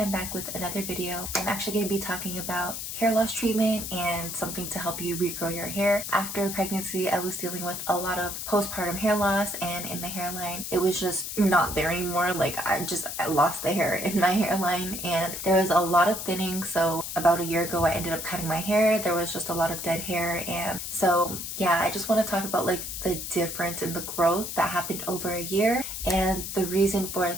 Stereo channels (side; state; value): left; noise; hiss, 6 dB below the sound